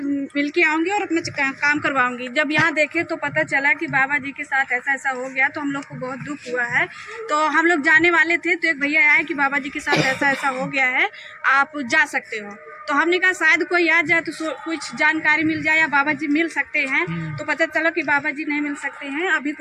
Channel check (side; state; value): both; identical; correlation 1.00